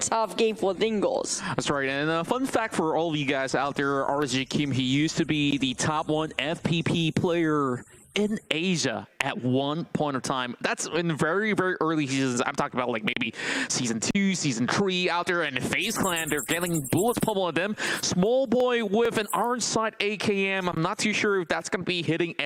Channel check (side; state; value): both; identical; correlation 1.00